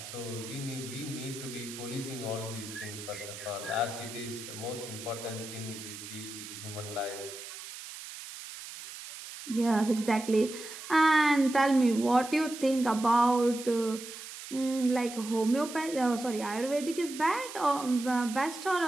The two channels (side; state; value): right; noise; hiss, 12 dB below the sound